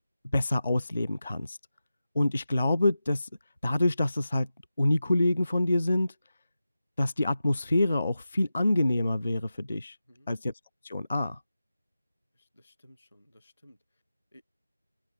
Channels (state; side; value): inverted; both; correlation -0.93